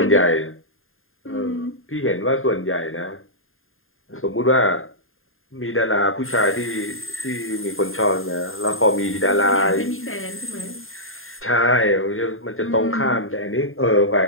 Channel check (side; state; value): right; late; 0.60 ms